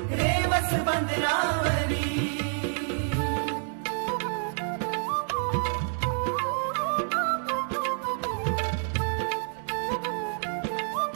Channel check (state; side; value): silent; left; 59 dB below the other